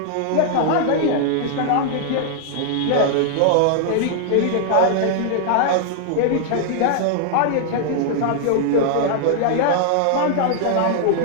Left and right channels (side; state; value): both; different; correlation -0.01